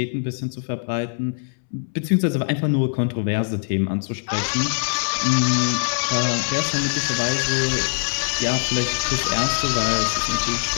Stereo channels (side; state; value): right; silent; 64 dB below the other